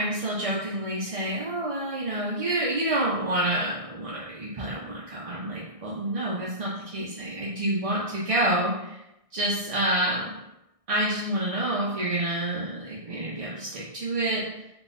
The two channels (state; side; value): late; left; 1.6 ms